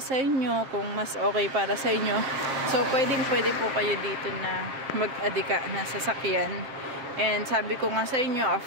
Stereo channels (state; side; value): late; left; 7.6 ms